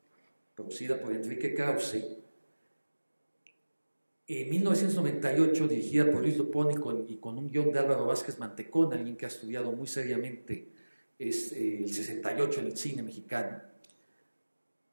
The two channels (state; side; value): inverted; both; correlation -1.00